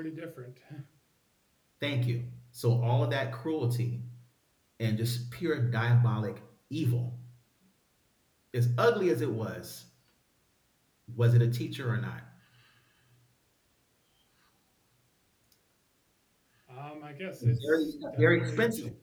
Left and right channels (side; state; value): both; identical; correlation 1.00